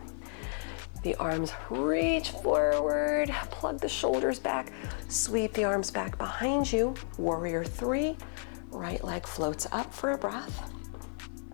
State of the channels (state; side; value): silent; right; digital silence